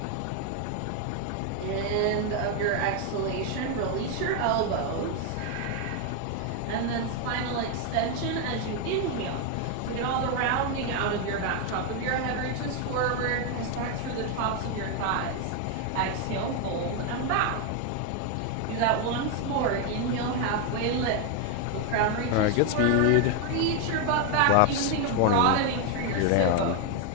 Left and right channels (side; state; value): both; different; correlation 0.01